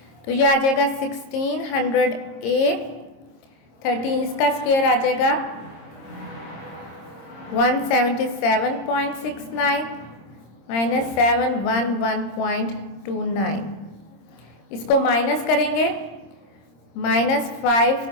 तो ये आ जाएगा 1600A, 13 इसका स्क्वायर आ जाएगा 177.69, -711.29, इसको माइनस करेंगे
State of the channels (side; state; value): right; late; 26 ms